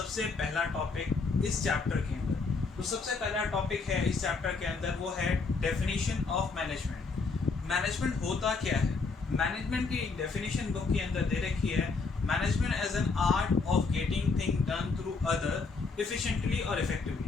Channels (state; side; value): quieter; right; 4.3 dB